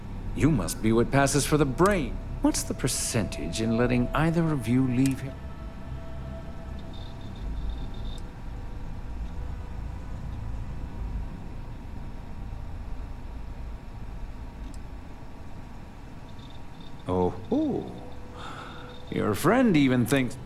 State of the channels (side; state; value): both; identical; correlation 1.00